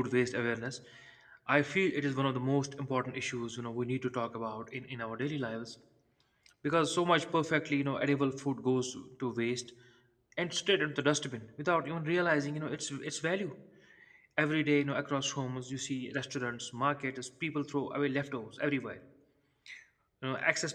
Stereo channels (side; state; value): both; identical; correlation 1.00